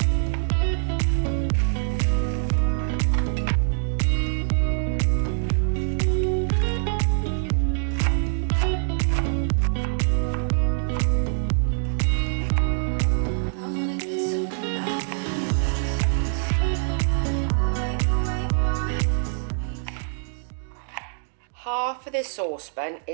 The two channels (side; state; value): left; silent; digital silence